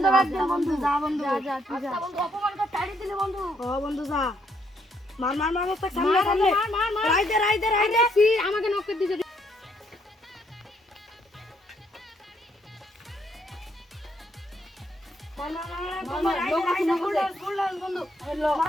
যাবে। একদিন বন্ধু যা বন্ধু যা তুই যা। বন্ধু অপমান করে তাড়ি দিলে বন্ধু। ও বন্ধু যা মার মুস্তাক সামনে রাইদে সি আমাকে নক করে দিছে।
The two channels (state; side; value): normal; both; correlation 0.72